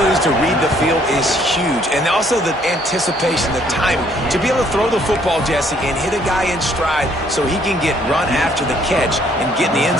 to read the field is huge, and also the anticipation, the timing. To be able to throw the football, Jesse, and hit a guy in stride so he can get run after the catch and get in the end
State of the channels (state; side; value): normal; both; correlation 0.64